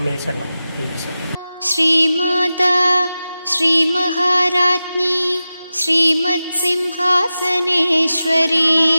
ശരണം ദേവി ശരണം. ശ്രീമാതാ ശ്രീമഹാരാജ്ഞി ശ്രീമത്സിംഹാസനേശ്വരി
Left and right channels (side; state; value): both; inverted; correlation -0.94